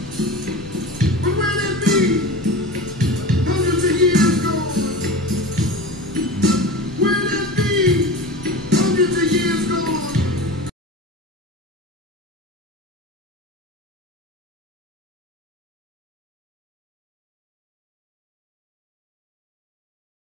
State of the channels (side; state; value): both; normal; correlation 0.31